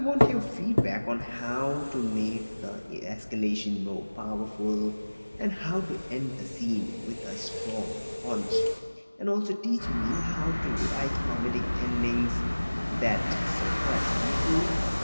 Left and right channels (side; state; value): both; inverted; correlation -1.00